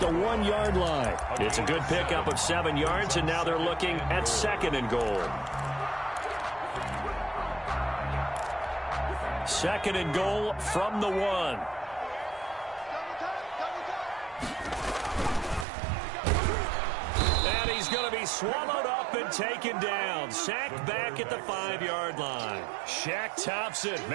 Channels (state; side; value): drops out; left; at 15.7 s